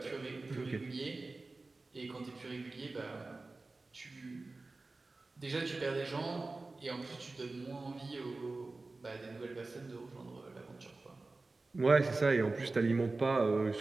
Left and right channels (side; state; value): left; quieter; 3.4 dB